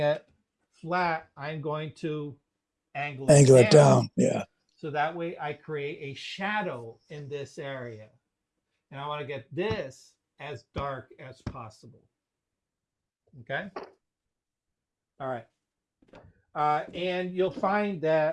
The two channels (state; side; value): identical; both; correlation 1.00